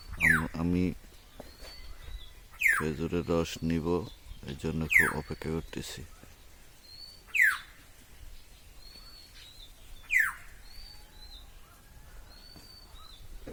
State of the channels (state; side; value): identical; both; correlation 1.00